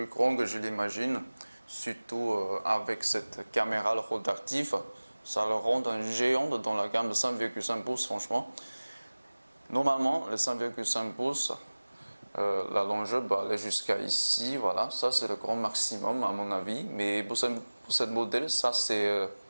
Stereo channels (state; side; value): inverted; both; correlation -1.00